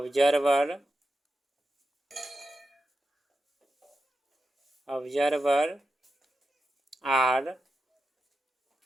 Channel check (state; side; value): normal; both; correlation 0.90